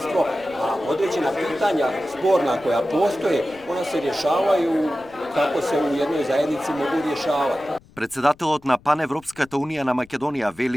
a određena pitanja sporna koja postoje, ona se rješavaju kako se u jednoj zajednici mogu rješavati. Председателот на Паневропската унија на Македонија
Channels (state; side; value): noise; left; rumble, 26 dB below the sound